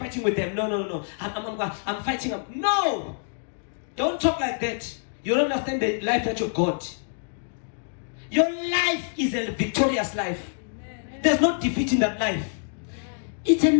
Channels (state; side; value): silent; right; digital silence